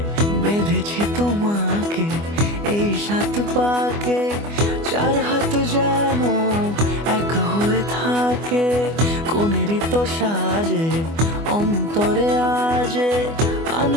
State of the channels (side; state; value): left; late; 24 ms